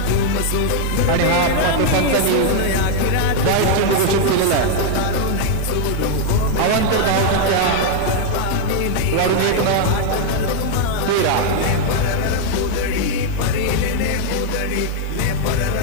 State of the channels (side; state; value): both; different; correlation 0.00